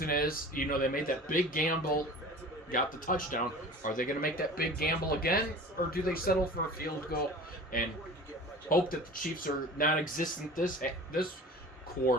is, you know, they made that big gamble, got the touchdown. Are they going to make that big gamble again, or do they settle for a field goal and hope that the Chiefs are non-existent this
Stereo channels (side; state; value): both; normal; correlation 0.40